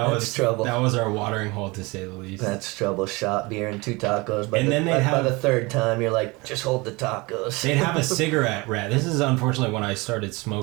was trouble. That was our watering hole, to say the least. That's trouble. Shot, beer, and 2 tacos. But And then by the third time, you're like, just hold the tacos. They'd have a cigarette wrap. This is unfortunately when I started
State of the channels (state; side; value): quieter; left; 24.7 dB